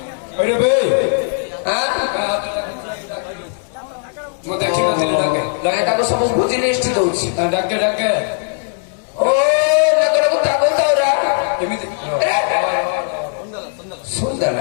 ଏଇରେ ବେ ମୁଁ ଦେଖିନଥିଲି ଡାକେ ତାକୁ ସବୁ ବୁଝି ଲିଷ୍ଟ ଦଉଛି ଡାକେ ଡାକେ ଓ ଡାକକୁ ତାକୁ ତାଉରା ଏମିତି ସୁନ୍ଦର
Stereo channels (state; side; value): silent; right; digital silence